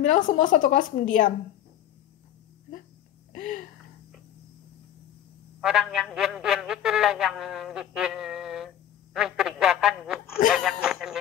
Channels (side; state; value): right; quieter; 10.9 dB